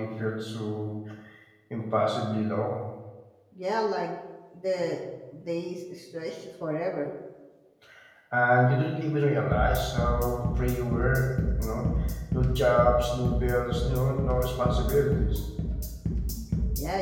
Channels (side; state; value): both; identical; correlation 1.00